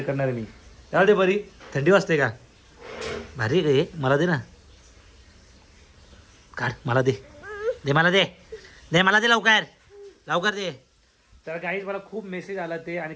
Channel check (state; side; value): identical; both; correlation 1.00